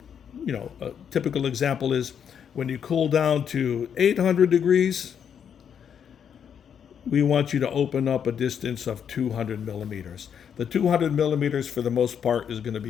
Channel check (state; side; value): quieter; right; 8.0 dB